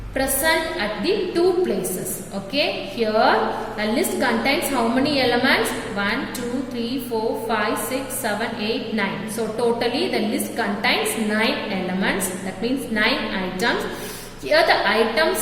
present at the 2 places. Okay, here the list contains how many elements? 1, 2, 3, 4, 5, 6, 7, 8, 9. So totally the list contains 9 elements. That means 9 items. Here the item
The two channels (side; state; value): both; identical; correlation 1.00